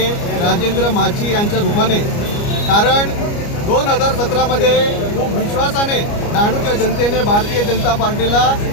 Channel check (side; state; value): right; late; 29 ms